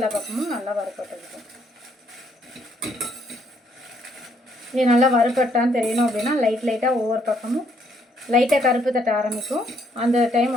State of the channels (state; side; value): normal; both; correlation 0.70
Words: பக்கமும் நல்லா வறுப்பட்டுருக்கும். இது நல்லா வறுப்பட்டான்னு தெரியணும் அப்படின்னா லைட்டாக ஒவ்வொரு பக்கமும் லைட்டாக கருப்பு தட்ட ஆரம்பிக்கும். அந்த டைம்